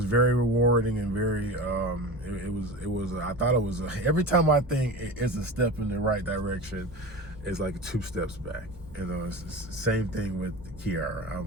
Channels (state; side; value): normal; both; correlation 0.30